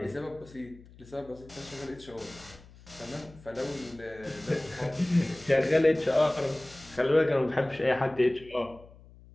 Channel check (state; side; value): noise; left; hum, 22 dB below the sound